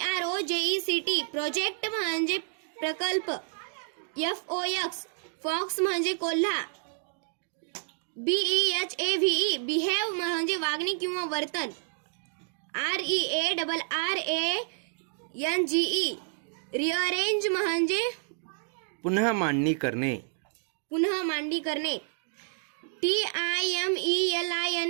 प्रोजेक्ट म्हणजे प्रकल्प. FOX फॉक्स म्हणजे कोल्हा. BEHAVE बिहेव म्हणजे वागणे किंवा वर्तन. REARRANGE रिअरेंज म्हणजे पुन्हा मांडणी करणे. पुन्हा मांडणी करणे.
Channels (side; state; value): left; silent; digital silence